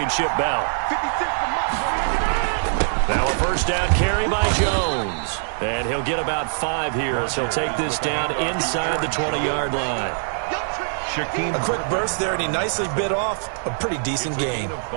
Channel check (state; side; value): silent; left; digital silence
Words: bout. Now a first down carry by Jones. And he'll get about 5 here as he'll take this down inside the 20-yard line. A quick burst there, and he nicely bit off a pretty decent gain.